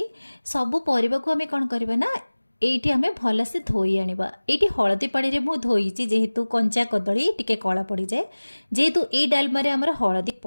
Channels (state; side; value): inverted; both; correlation -1.00